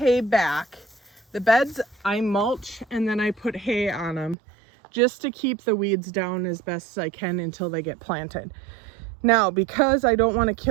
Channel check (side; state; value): left; drops out; at 4.4 s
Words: back. The beds I mulch and then I put hay on them just to keep the weeds down as best as I can until they get planted. Now, because I don't want to